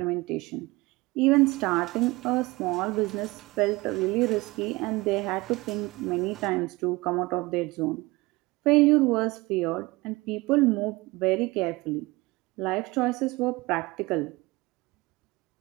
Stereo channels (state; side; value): quieter; left; 22.3 dB